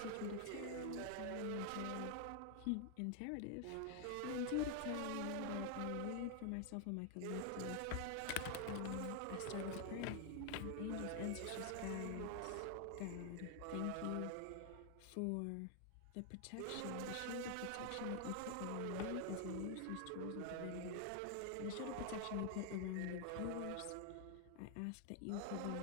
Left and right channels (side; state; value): both; different; correlation 0.00